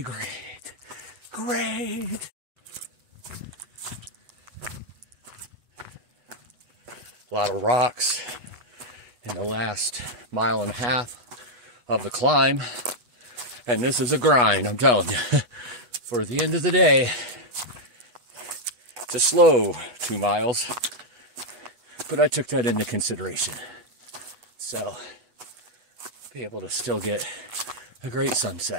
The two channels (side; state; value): left; late; 8.1 ms